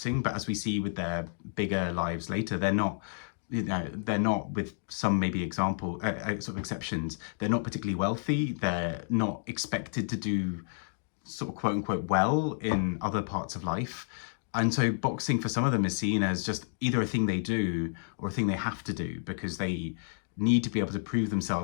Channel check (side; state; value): right; silent; digital silence